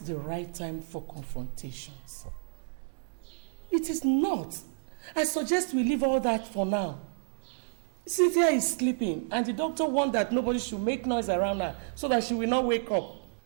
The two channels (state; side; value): silent; left; 58 dB below the other